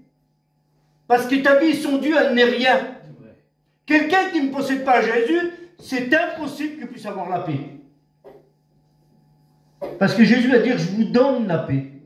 Parce que ta vie sans Dieu, elle n'est rien. Quelqu'un qui ne possède pas Jésus, c'est impossible qu'il puisse avoir la paix. Parce que Jésus va dire, je vous donne la paix.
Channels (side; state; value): both; identical; correlation 1.00